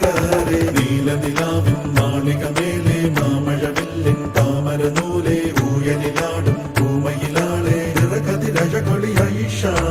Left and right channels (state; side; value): identical; both; correlation 1.00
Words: re നീല നിലാവിൻ മാളികമേലെ മാമഴവില്ലിൻ താമരനൂലെ ഊയലിലാടും പൂമയിലാളെ നിറകതിരഴകൊളിയായി